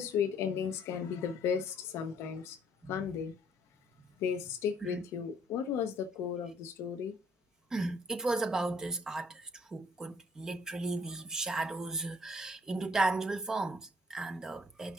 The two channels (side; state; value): both; normal; correlation 0.63